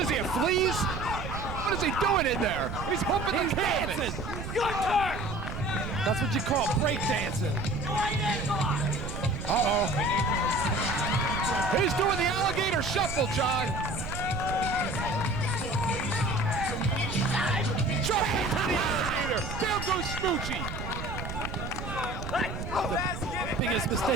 is he, a fleas? What is he doing in there? He's humping He's the canvas. dancing. Your turn. That's what you call break dancing. Right in, come on. Uh-oh. He's doing the alligator shuffle, John. Jump into the alligator. Down goes Smoochie. The biggest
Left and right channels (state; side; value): noise; right; rumble, 7 dB below the sound